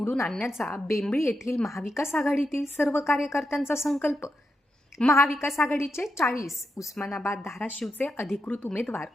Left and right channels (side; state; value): both; normal; correlation 0.85